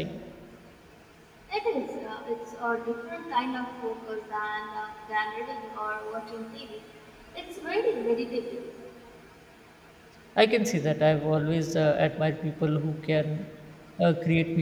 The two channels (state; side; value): identical; both; correlation 1.00